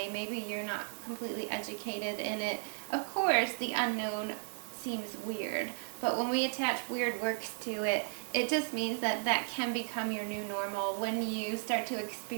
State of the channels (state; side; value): silent; left; 55 dB below the other